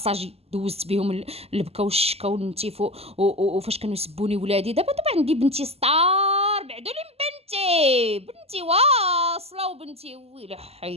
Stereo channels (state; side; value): late; left; 0.29 ms